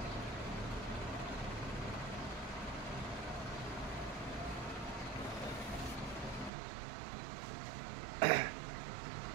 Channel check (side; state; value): left; drops out; at 6.5 s